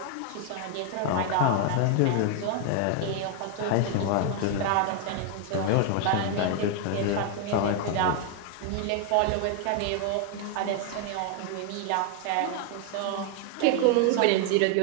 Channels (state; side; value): different; both; correlation 0.00